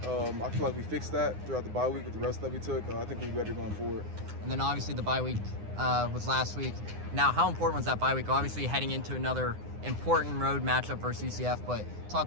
I feel like we fixed that throughout the bye week with the rest that we took. I think we're better going forward. And then obviously the bye week was last week. Now, how important was that bye week? Obviously heading into another important road matchup versus UCF, but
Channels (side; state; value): left; late; 9.7 ms